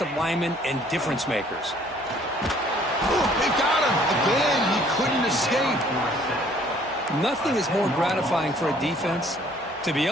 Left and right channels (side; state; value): both; normal; correlation 0.59